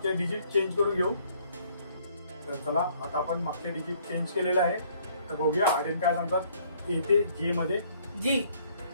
डिजिट चेंज करून घेऊ. तर चला आता आपण मागचे डिजिट चेंज केलेलं आहे, तर बघूया आर्यन काय सांगतात ए ते जे मध्ये. जी.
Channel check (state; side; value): inverted; both; correlation -0.62